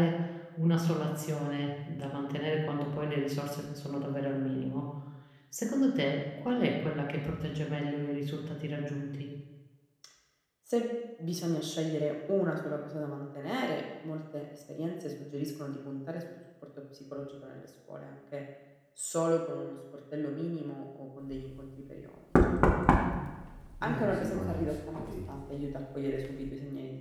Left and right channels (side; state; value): both; identical; correlation 1.00